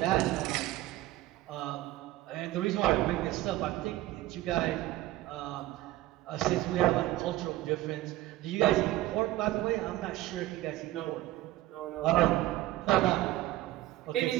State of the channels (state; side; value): quieter; left; 16.1 dB